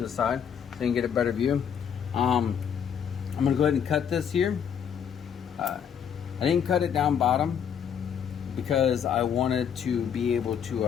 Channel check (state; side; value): quieter; right; 8.0 dB